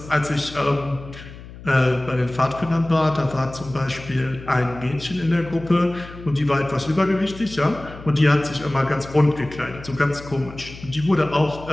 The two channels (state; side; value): noise; left; hum, 16 dB below the sound